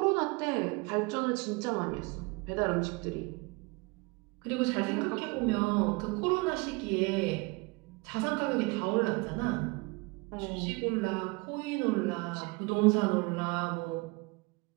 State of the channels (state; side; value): quieter; left; 27.1 dB